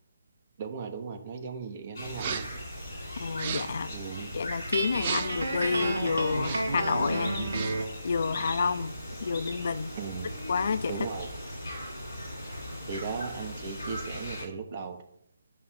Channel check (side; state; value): both; inverted; correlation -0.81